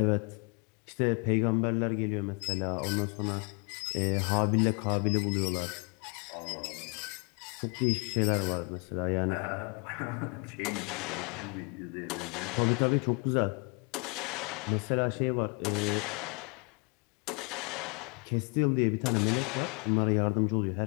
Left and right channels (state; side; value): quieter; right; 33.2 dB